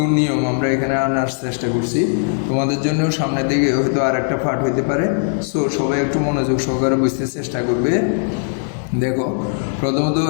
নিয়ম আমরা এখানে আনার চেষ্টা করছি। তোমাদের জন্য সামনের দিকে হয়তো আর একটা পার্ট হইতে পারে। সো সবাই একটু মনোযোগ সহকারে বুঝতে চেষ্টা করবে। দেখো, প্রথমত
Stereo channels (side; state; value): right; silent; digital silence